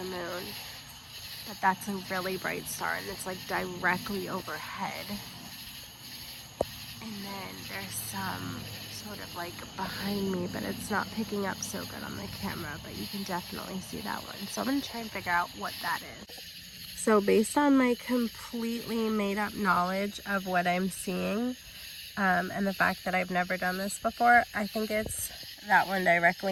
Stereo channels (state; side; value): identical; both; correlation 1.00